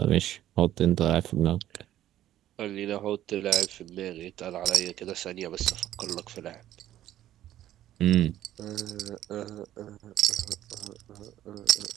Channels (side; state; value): left; quieter; 12.8 dB